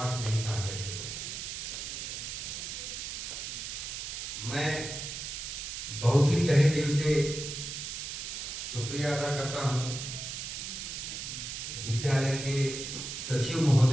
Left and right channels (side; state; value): right; noise; hiss, 6 dB below the sound